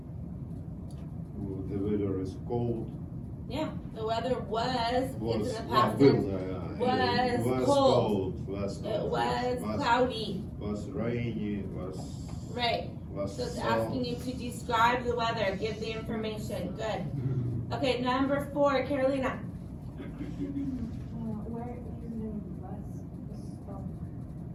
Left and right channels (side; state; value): both; identical; correlation 1.00